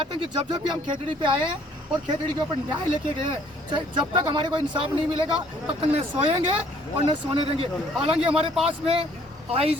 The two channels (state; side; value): normal; both; correlation 0.60